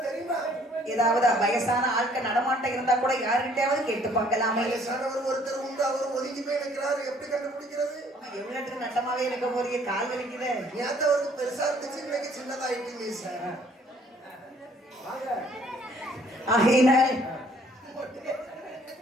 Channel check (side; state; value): both; normal; correlation 0.60